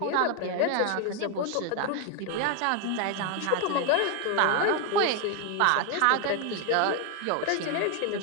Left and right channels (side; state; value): both; different; correlation 0.01